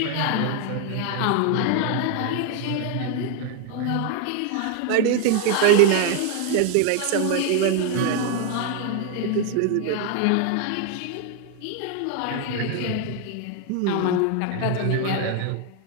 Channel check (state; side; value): different; both; correlation 0.01